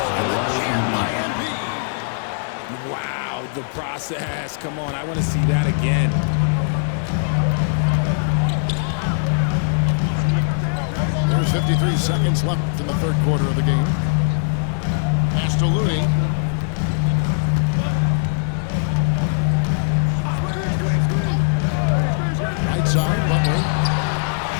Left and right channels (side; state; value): right; silent; digital silence